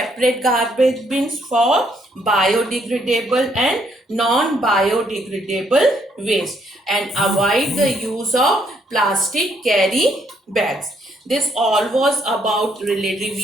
garbage bins? For biodegradable and non-biodegradable waste, and avoid the use of plastic carry bags. This all was about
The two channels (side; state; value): both; normal; correlation 0.70